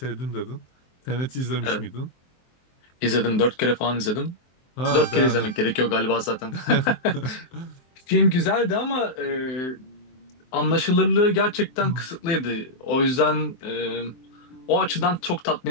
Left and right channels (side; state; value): right; late; 23 ms